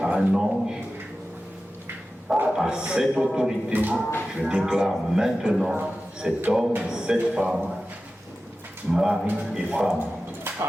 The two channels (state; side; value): normal; both; correlation 0.94